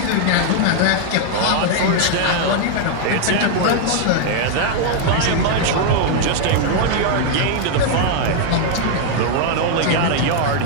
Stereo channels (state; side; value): different; both; correlation 0.00